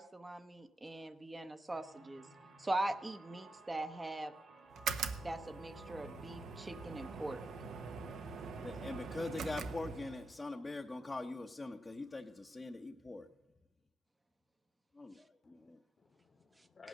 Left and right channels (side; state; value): both; normal; correlation 0.87